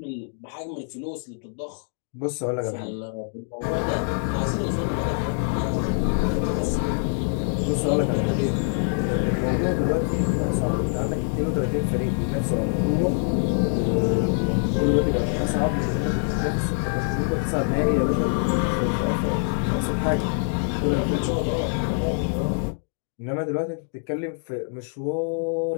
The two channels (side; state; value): right; silent; 61 dB below the other